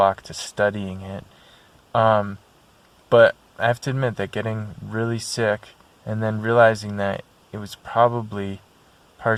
to studying it. But I have to admit that getting really sick and then realizing that it was probably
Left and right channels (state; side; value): identical; both; correlation 1.00